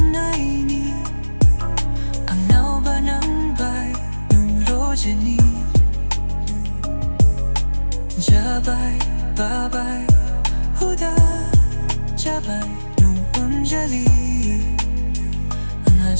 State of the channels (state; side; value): inverted; both; correlation -1.00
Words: ni ang naubanambay nung rodya ni Jabay, babay, huda Jabay nung anjali ang